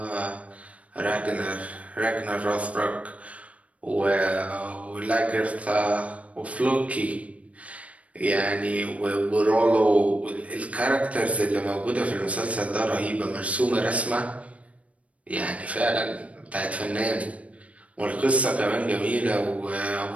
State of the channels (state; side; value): late; left; 0.065 ms